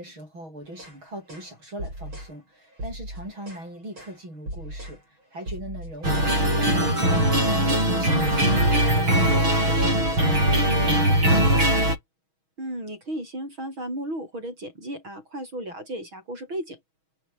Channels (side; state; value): left; late; 6.2 ms